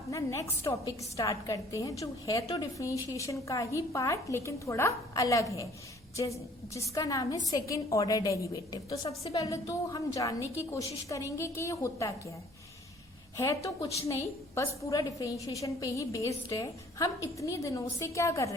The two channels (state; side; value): normal; both; correlation 0.55